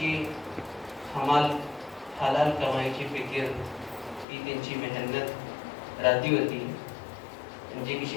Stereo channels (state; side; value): drops out; right; at 4.2 s